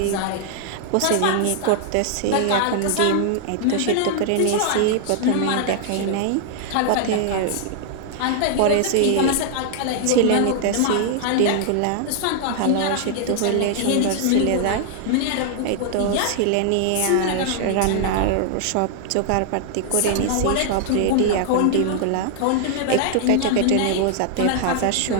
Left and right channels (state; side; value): different; both; correlation -0.01